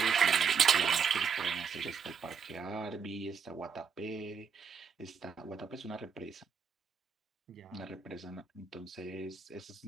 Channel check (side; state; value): left; quieter; 6.2 dB